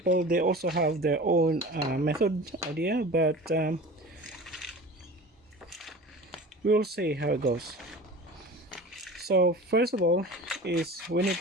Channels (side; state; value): both; normal; correlation 0.37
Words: they also have their own method idea, but we'll see how it goes. So first of all is we need